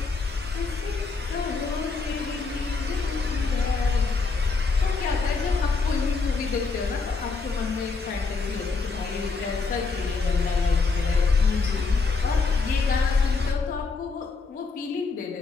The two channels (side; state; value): right; quieter; 4.3 dB